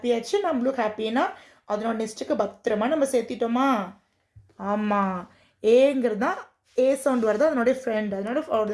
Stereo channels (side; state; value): both; identical; correlation 1.00